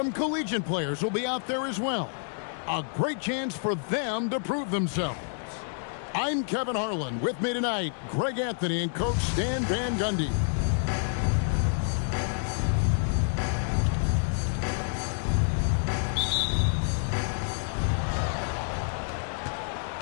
collegiate players will be out there as well. A great chance for them to prove themselves. I'm Kevin Harlan. With me tonight, Greg Anthony and Coach Stan Van Gundy.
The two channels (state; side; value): silent; right; digital silence